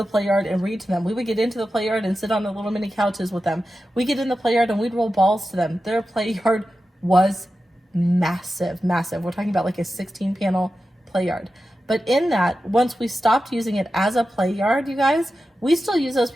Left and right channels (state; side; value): normal; both; correlation 0.92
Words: play yard and read to them. We would get into the play yard and sit on the little mini couches with them. We get in the play yard and we'd roll balls to them. Their play yard was massive, massive. We're talking about like a 16-panel play yard. But in that, once we stopped using it as a play yard, you guys, we still use those